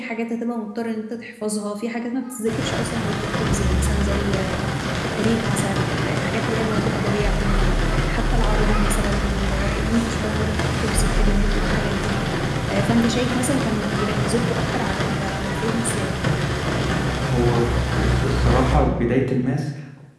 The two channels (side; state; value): both; identical; correlation 1.00